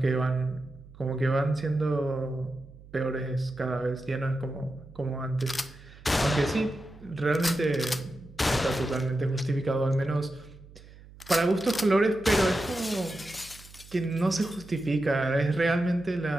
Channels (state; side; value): noise; right; hum, 20 dB below the sound